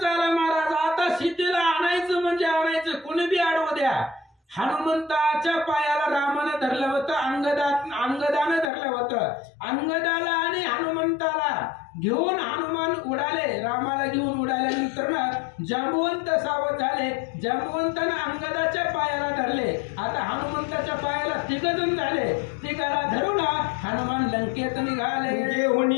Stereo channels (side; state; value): right; drops out; at 8.7 s